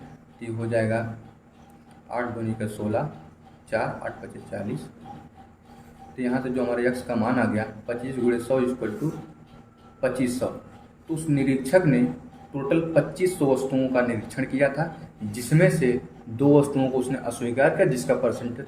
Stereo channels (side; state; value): both; identical; correlation 1.00